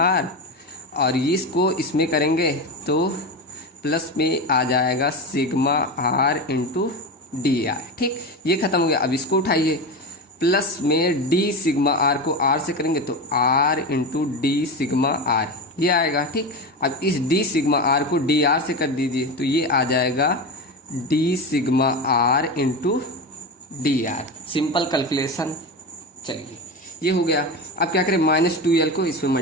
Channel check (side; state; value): both; normal; correlation 0.21